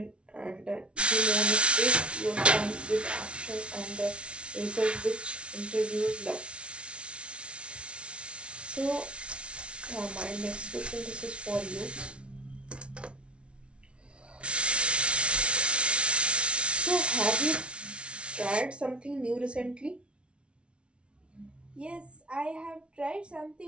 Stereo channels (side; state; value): left; late; 0.059 ms